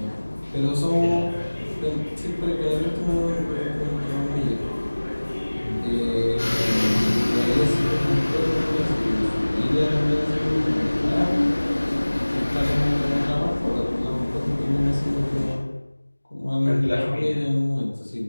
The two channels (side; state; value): both; inverted; correlation -1.00